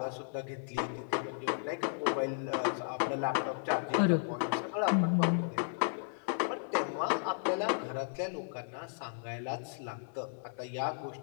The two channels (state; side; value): silent; right; 55 dB below the other